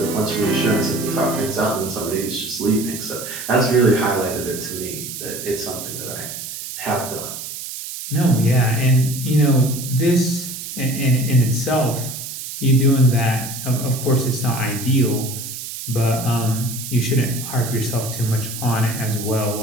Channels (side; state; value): right; noise; hiss, 8 dB below the sound